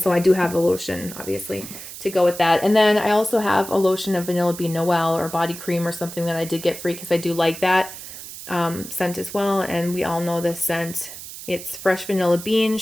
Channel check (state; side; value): noise; right; hiss, 12 dB below the sound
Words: I do have the lotion, obviously, to go with that. And then I also have a lotion of vanilla bean Noel or body cream or something that I did get free because I do like that scent as well. And we all know this scent. It's fresh vanilla bean,